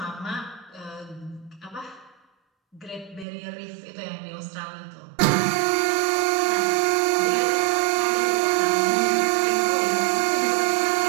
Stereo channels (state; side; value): drops out; left; at 3.2 s